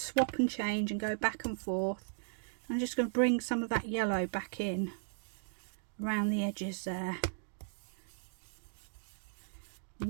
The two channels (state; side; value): silent; left; digital silence